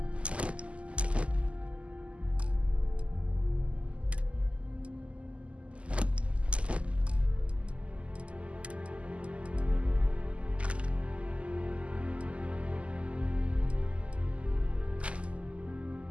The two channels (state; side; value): late; left; 0.058 ms